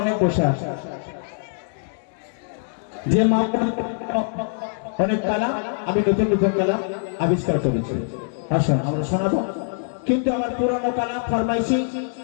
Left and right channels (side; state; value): right; silent; digital silence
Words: অনেক বসে আছে, যে মা অনেক কালাম আমি নতুন নতুন কালাম আবিষ্কার করেছি। আসুন আমরা শোনাবো, কিন্তু আমার পুরনো কালাম ফরমাইশি